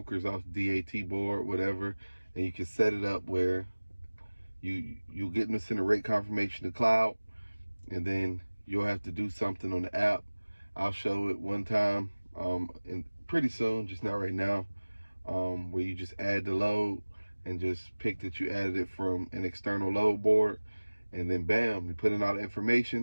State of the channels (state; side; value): inverted; both; correlation -1.00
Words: off DAT board, whatever, and you can set it up where you'll get them to send a rate confirmation to Cloud, and then you'll have to do something on the app. I'll show it one time, and pretty soon, just not right now, where you just add the load and just pick that you added it from an external load board, and then bam, you put in all the